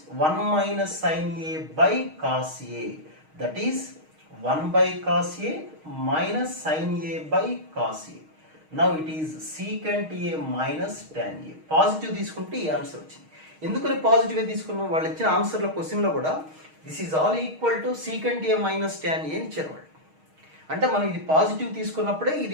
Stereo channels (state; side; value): late; left; 6.4 ms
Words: 1 minus sin a by cos a, that is 1 by cos a minus sin a by cos a. Now it is secant a minus tan a. Positive తీసుకుంటే ఈ answer వచ్చింది. ఎందుకని positive తీసుకున్నాం? వాళ్ళు ఇచ్చిన ఆన్సర్లో క్వశ్చన్లో కూడా this is all equal to secant a minus tan a అని ఇచ్చారు వాళ్ళు. అంటే మనం ఇది పాజిటివ్ తీసుకున్నప్పుడే